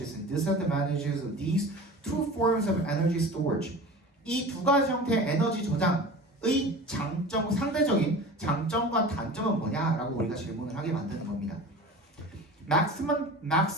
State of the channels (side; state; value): both; normal; correlation 0.36